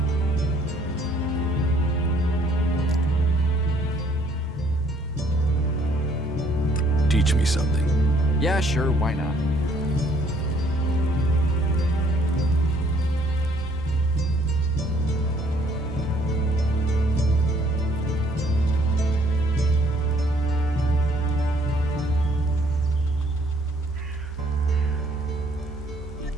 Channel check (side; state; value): both; normal; correlation 0.63